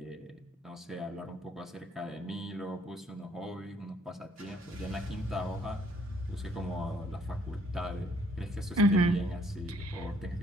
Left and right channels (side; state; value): both; normal; correlation 0.65